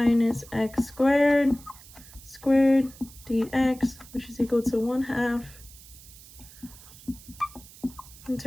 x squared dx, which is equal to 1/2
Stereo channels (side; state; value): right; noise; hiss, 20 dB below the sound